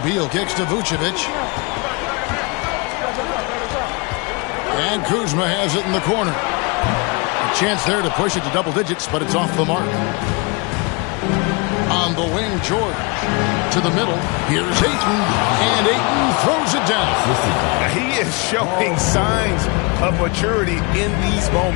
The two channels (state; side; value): quieter; right; 29.7 dB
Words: Beal kicks to Vucevic. And Kuzma has it in the corner. A chance there to push it to double digits, but it's off the mark. On the wing, George. To the middle. Here's Ayton. And Ayton throws it down. He is showing signs of maturity in these